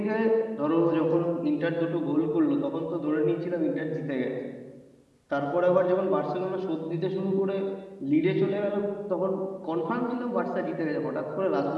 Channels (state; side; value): identical; both; correlation 1.00